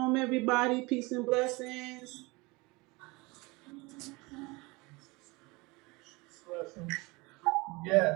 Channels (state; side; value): quieter; left; 24.9 dB